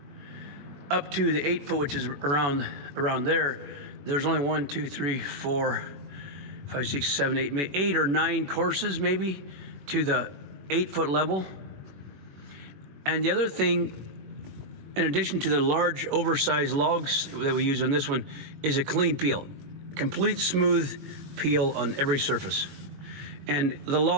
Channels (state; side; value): late; left; 21 ms